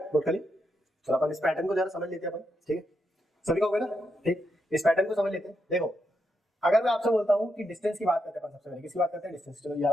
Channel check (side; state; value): both; normal; correlation 0.82